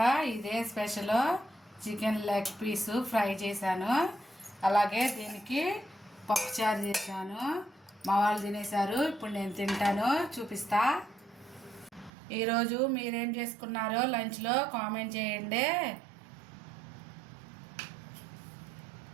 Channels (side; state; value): left; drops out; at 12.1 s